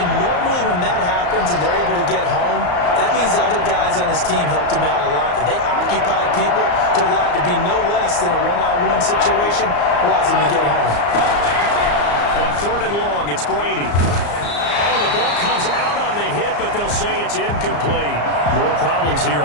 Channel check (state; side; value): late; right; 34 ms